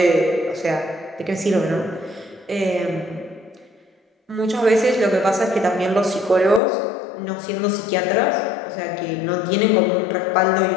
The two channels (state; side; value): drops out; right; at 6.6 s